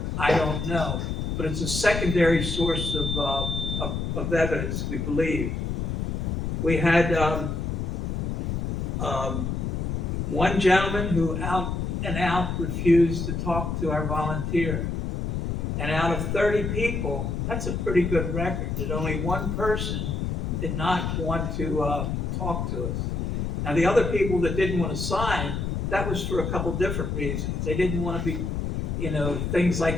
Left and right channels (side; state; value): left; noise; rumble, 1 dB below the sound